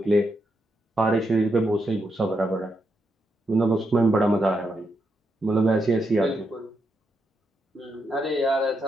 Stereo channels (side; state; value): both; normal; correlation 0.82